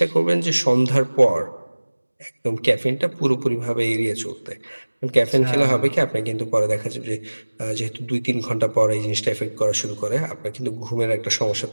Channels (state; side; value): inverted; both; correlation -1.00